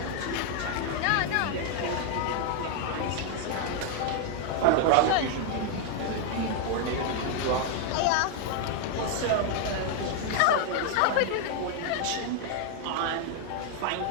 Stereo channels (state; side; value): different; both; correlation 0.01